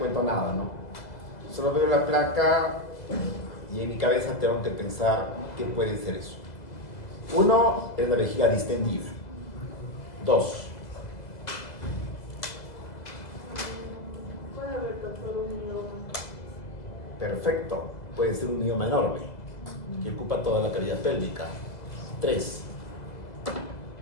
nada, ¿no? Solo veo la placa y en mi cabeza tengo que pensar qué puede ser eso. Uno es la vejiga distendida. Dos. Puede haber todo un mioma. Perfecto. Puede ser un mioma enorme que ocupa toda la cavidad pélvica. Tres.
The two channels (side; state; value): right; late; 2.0 ms